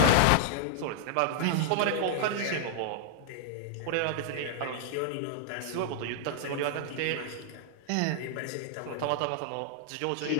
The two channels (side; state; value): both; different; correlation -0.01